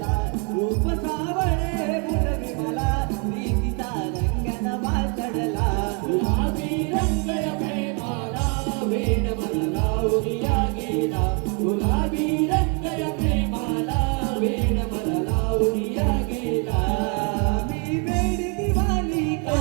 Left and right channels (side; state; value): left; quieter; 36.4 dB